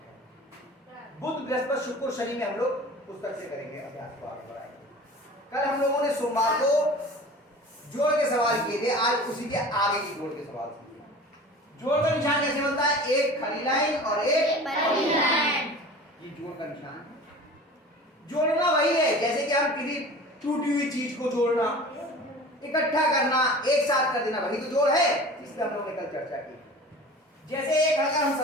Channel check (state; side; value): normal; both; correlation 0.40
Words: बुध बृहस्पति शुक्र शनि में हम लोग पुस्तक से करेंगे, अभ्यास को आगे बढ़ाएंगे। कल हम लोगों ने सोमवार को जोड़ के सवाल किए थे, आज उसी के आगे की जोड़ के सवाल सीखे। जोड़ का निशान कैसे बनता है? एक खड़ी लाइन और एक बड़ी लाइन। ये जोड़ का निशान है। जोड़ना वही है जैसे कि हम किसी टूटी हुई चीज को जोड़ना, इकट्ठा करना, एक साथ कर देना, वही तो जोड़ है। इस पर हम लोगों ने कल चर्चा की। जैसे एक अगर हम